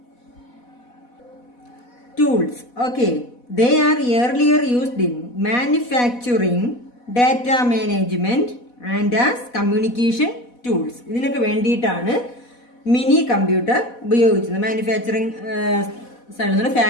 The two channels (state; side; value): late; right; 4.1 ms